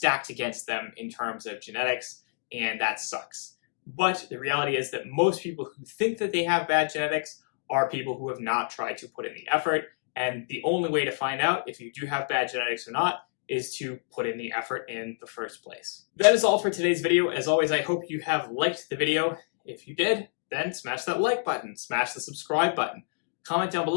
against them in terms of genetics, and that sucks. But the reality is that most people who think that they have bad genetics are people who have not tried to put in the effort. And the only way to find out if you do have bad genetics or not is to put in the effort in the first place. That is all for today's video. As always, I hope you have liked the video. If you did, then smash that like button, smash the subscribe button. Comment down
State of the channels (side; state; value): right; silent; digital silence